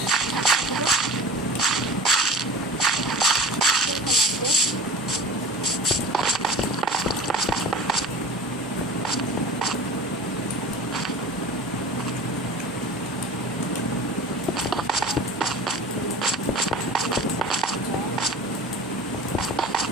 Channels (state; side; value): normal; both; correlation 0.37